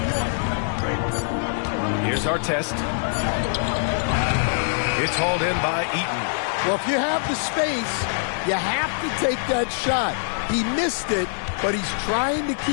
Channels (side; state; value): right; silent; digital silence